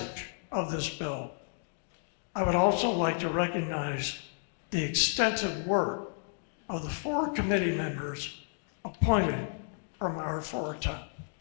of this bill. I would also like to recognize the extensive work of the 4 committee members appointed from our 4 towns.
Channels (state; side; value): silent; right; digital silence